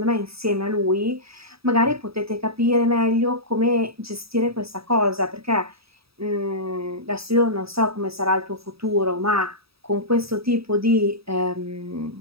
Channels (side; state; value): left; late; 0.77 ms